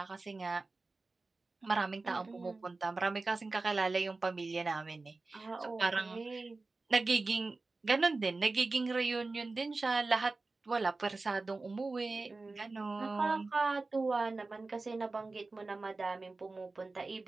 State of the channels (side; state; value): left; quieter; 3.6 dB